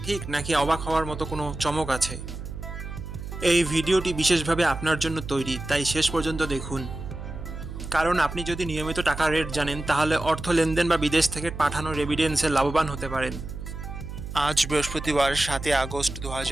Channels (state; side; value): noise; right; hum, 9 dB below the sound